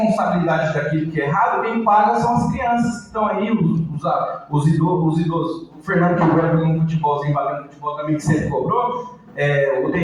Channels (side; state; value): both; identical; correlation 1.00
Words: daquilo que é errado, quem paga são as crianças que estão aí, os idosos. O Fernando que joga no futebolzinho, batendo futebol também, que sempre cobrou. O